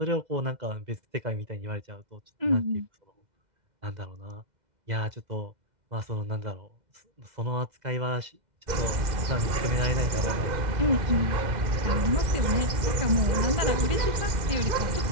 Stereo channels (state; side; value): late; left; 2.1 ms